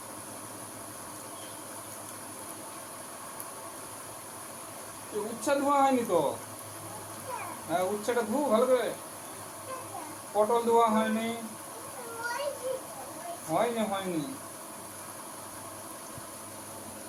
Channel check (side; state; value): both; identical; correlation 1.00